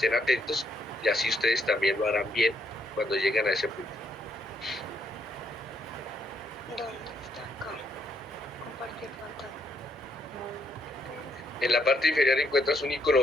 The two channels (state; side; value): normal; both; correlation 0.74